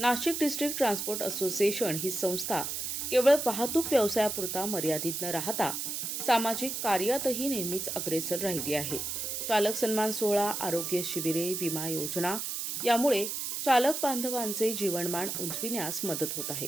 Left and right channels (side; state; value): right; noise; hiss, 3 dB below the sound